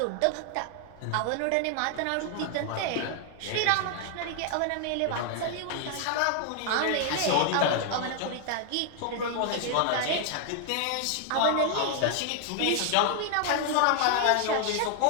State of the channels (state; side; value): different; both; correlation 0.00